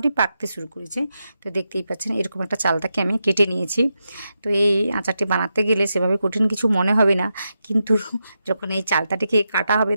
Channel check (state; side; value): inverted; both; correlation -0.87